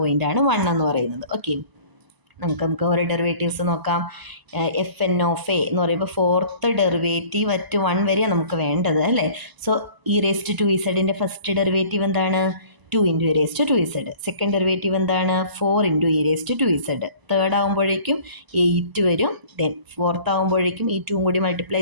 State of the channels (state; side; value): late; left; 1.0 ms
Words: 1 എന്ന് പറയുന്നത്. ഓക്കെ, നമുക്ക് ഓരോ ഡെറിവേറ്റീവ്സ് നോക്കാം. fn എന്ന് പറയുമ്പോൾ 4th ഡെറിവേറ്റീവ് അറ്റ് 1 വരെയാണ് നമുക്ക് വേണ്ടത്, അല്ലേ. സോ e⁻²z ഫസ്റ്റ് ഡെറിവേറ്റീവ് എന്താണ്, 2 × e⁻²z. സെക്കൻഡ് ഡെറിവേറ്റീവ് എന്താണ്, 4 × e⁻²z. തേർഡ് ആകുമ്പോഴേക്കും 8 വരും. ദെൻ ഫോർത്ത് ആകുമ്പോഴേക്കും ഈ 2 കൂടി മൾട്ടിപ്ലൈ